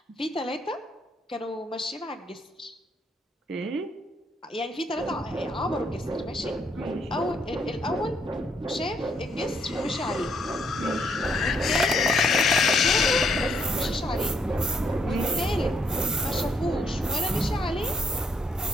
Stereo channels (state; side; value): normal; both; correlation 0.72